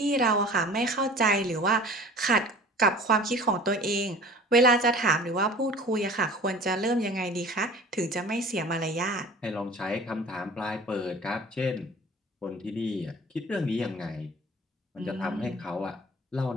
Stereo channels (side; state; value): both; normal; correlation 0.44